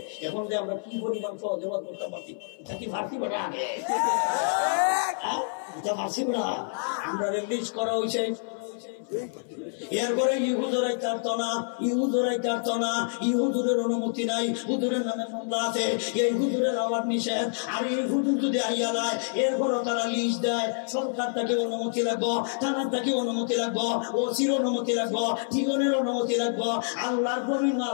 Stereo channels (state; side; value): silent; right; 58 dB below the other